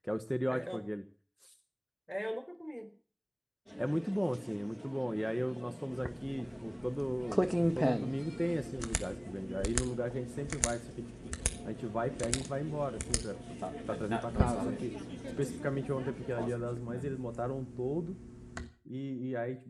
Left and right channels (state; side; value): identical; both; correlation 1.00